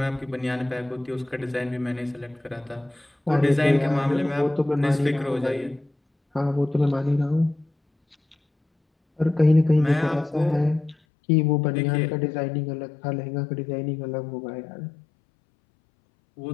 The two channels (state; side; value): drops out; right; at 11.0 s